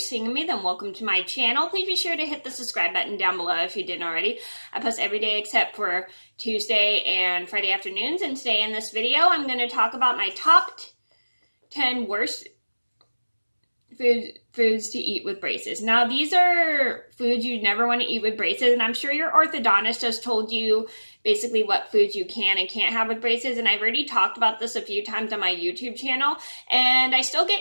of me, then welcome to my channel. Please be sure to hit the subscribe button down below if you didn't already. I post every day except for Tuesday and Friday afternoons, and today in this video I'm going to talk about my top 10 worst foods to eat with braces. Now, these are foods you never want to eat with braces, and I'm sure your orthodontist has told you basically what foods you can and can't have with braces, and I've already talked about this a few times on my YouTube channel, and I still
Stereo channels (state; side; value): inverted; both; correlation -1.00